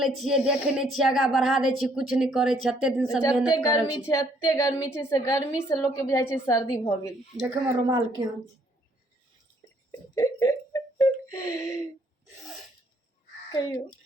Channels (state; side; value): normal; both; correlation 0.66